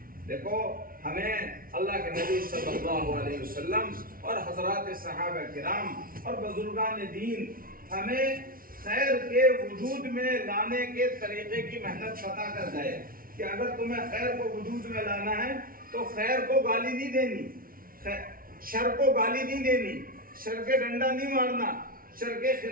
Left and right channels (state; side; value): late; left; 0.42 ms